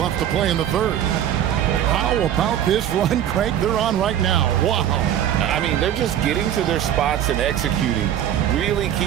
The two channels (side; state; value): left; quieter; 10.6 dB